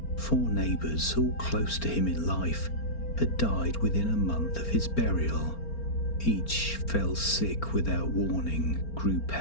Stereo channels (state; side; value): late; right; 4.4 ms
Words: 4 neighbours, all close to him in life, had died within a month of his burial. Each fell sick without warning, grew